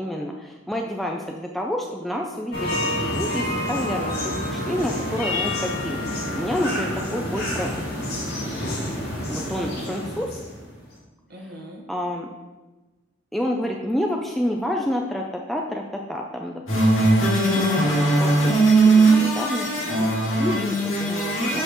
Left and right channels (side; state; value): both; normal; correlation 0.68